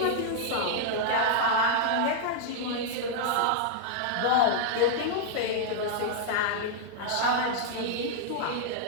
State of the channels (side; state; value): both; different; correlation -0.01